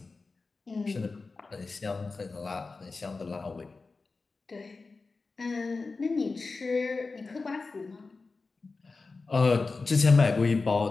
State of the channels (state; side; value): quieter; right; 4.0 dB